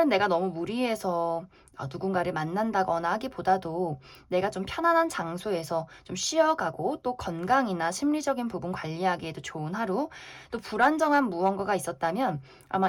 내가 너무 무리해서 누군가를 만난다거나 하기보다도 내가 좀 편안한 장소에서 좀 쉬어가고 또 건강이나 심리적인 부분 관리하기에도 좋은 하루, 또 불안정한 무언가가 있었다면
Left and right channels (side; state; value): both; identical; correlation 1.00